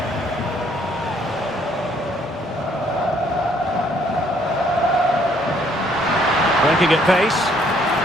Breaking at pace.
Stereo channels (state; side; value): normal; both; correlation 0.65